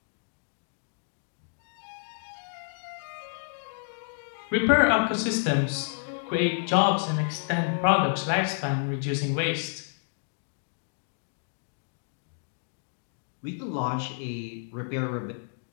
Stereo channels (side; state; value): right; silent; digital silence